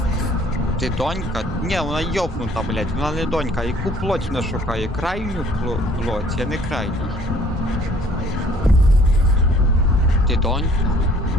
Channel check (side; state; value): both; normal; correlation 0.57